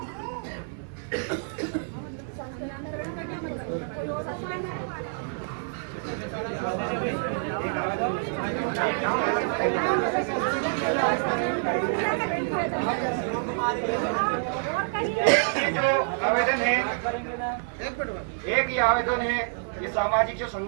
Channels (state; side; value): silent; left; 58 dB below the other